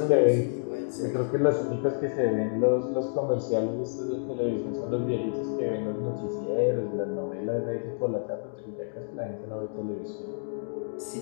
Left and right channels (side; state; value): right; silent; digital silence